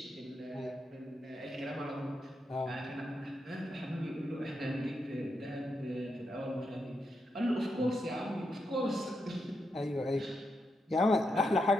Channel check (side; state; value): both; normal; correlation 0.83